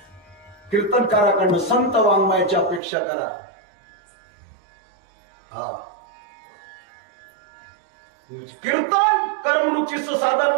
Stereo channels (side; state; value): left; drops out; at 2.8 s